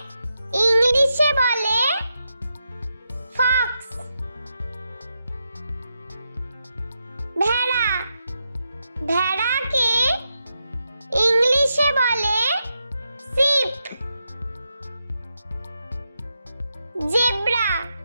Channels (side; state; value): both; inverted; correlation -0.85